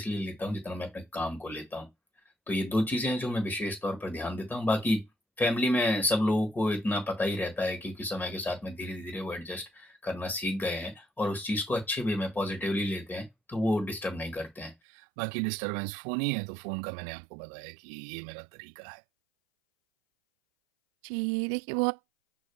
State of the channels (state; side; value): drops out; left; at 14.8 s